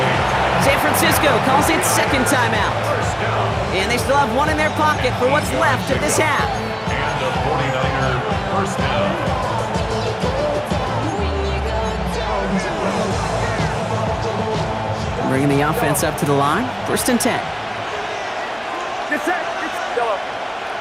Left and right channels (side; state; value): both; identical; correlation 1.00